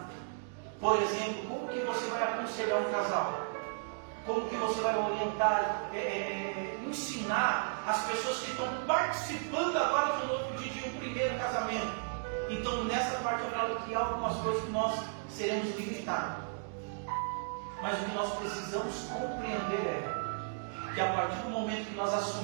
Por exemplo, como que você vai aconselhar um casal? Como que você vai orientar, ensinar as pessoas que estão participando agora do novo de um primeiro casamento? Então, nessa parte eu falo que há algumas coisas que nós seremos limitados. Mas o que nós precisamos compreender é que a partir do momento que nós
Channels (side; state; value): left; silent; digital silence